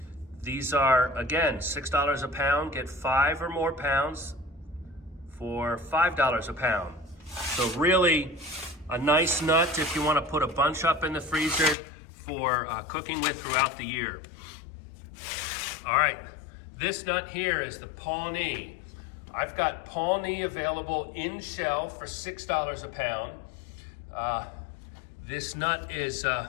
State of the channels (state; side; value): drops out; right; at 11.8 s